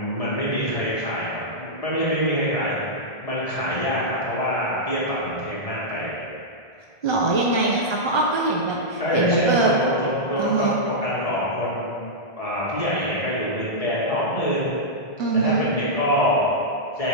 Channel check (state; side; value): late; right; 1.3 ms